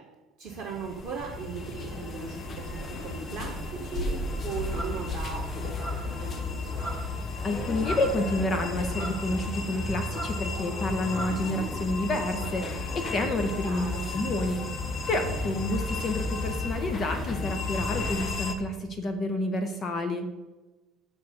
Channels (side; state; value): both; normal; correlation 0.63